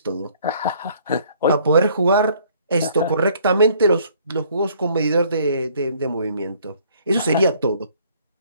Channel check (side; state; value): both; inverted; correlation -0.60